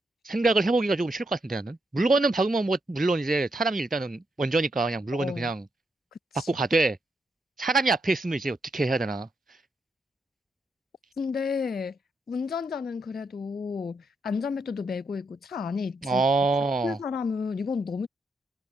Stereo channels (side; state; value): both; normal; correlation 0.80